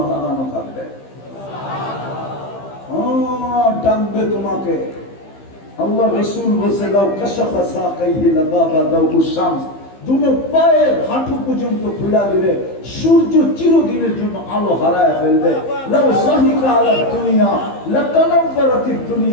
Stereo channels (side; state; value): right; late; 15 ms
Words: লাগানো থাকবে। ডাকবে তোমাকে। আল্লাহ রাসূল বলছে, লাউ কাশাফা সাকাইহি লাগাবা দাউস শামস, দুনো পায়ের হাঁটু পর্যন্ত খুলে দিলে সূর্য চিরদিনের জন্য আলো হারায় ফেলবে। লাউ সাহিকা আলা দুনিয়া লাতানাফারাতিদ